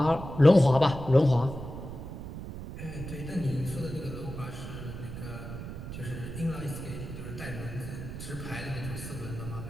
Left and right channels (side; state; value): right; noise; rumble, 9 dB below the sound